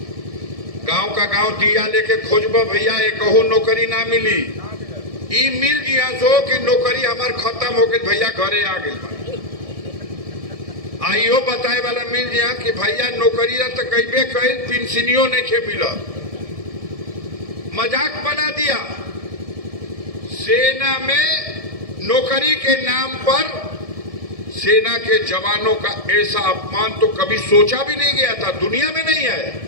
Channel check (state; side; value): late; left; 1.7 ms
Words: गांव का गांव दिया लेके खोजबा भैया, एक नौकरी ना मिली। ई मिल जिया सो कि नौकरी हमार खत्म हो गई भैया, घरे आ गई। आइयो बताए वाला मिल जिया कि भैया नौकरी तो कईबे कई, पेंशनियों नहीं खे मिला। मजाक बना दिया। सेना में नौकरी के नाम पर सेना के जवानों का ऐसा अपमान तो कभी सोचा भी नहीं गया था, दुनिया में नहीं